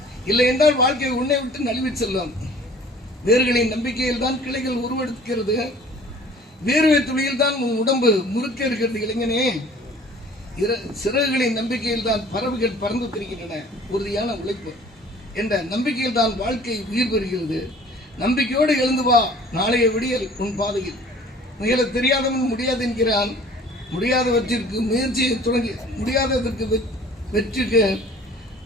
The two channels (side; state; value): both; normal; correlation 0.49